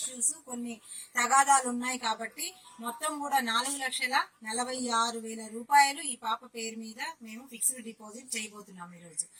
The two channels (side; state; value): both; identical; correlation 1.00